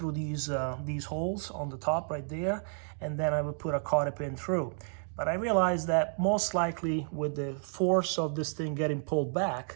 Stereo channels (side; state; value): left; silent; 57 dB below the other